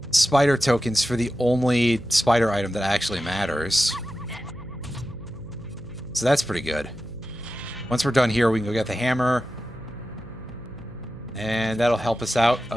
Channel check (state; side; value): noise; right; hum, 18 dB below the sound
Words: spider tokens for the only spider item that actually matters. So that's pretty good. Once we're done here, we can go get the hammer. And that'll help us out